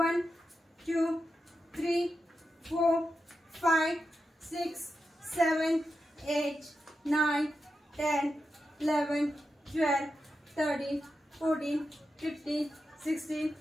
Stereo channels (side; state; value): both; normal; correlation 0.89